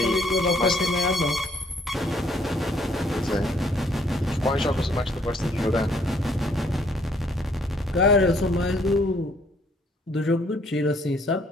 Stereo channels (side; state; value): both; normal; correlation 0.65